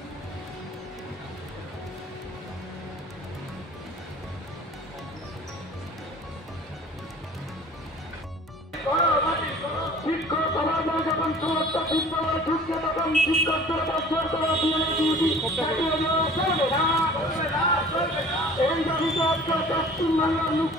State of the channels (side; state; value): both; normal; correlation 0.46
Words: শিক্ষক সমাজ যখন সমস্ত বিদ্যালয় ঢুকছে তখন শিক্ষকদের বছর করা এই দাবিতে আজকে পশ্চিমবাংলার